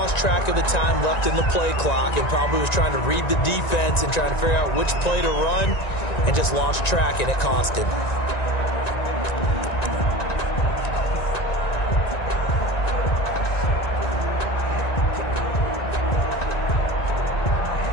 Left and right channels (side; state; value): right; late; 1.9 ms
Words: track of the time left in the play clock and probably was trying to read the defense and trying to figure out which play to run and just lost track, and it cost him.